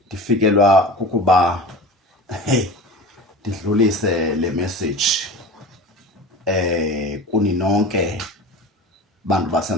ndifikelwa kukuba ndidlulise le message kuni nonke bantu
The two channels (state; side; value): normal; both; correlation 0.34